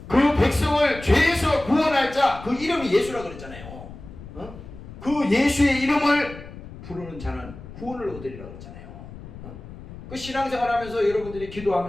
그 백성을 죄에서 구원할 자, 그 이름이 예수라 그랬잖아요. 그 예수의 이름을 부르는 자는 구원을 얻으리라 그랬잖아요. 그 신앙생활하면서 여러분들이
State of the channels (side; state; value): left; noise; rumble, 15 dB below the sound